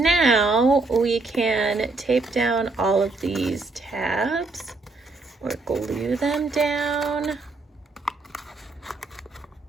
we can tape down all of these tabs or glue them down.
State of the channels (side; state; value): left; quieter; 3.5 dB